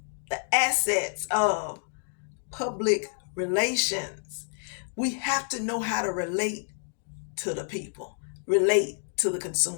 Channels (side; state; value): right; silent; 59 dB below the other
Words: the assets of public relations. We have to know how to relate to the people, relate to the